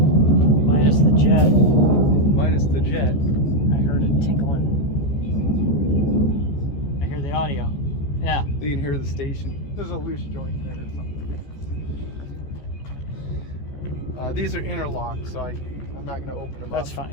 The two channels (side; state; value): right; late; 14 ms